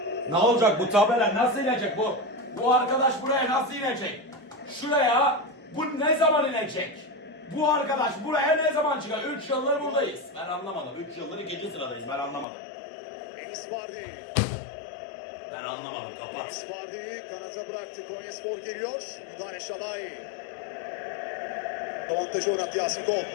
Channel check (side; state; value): right; drops out; at 12.5 s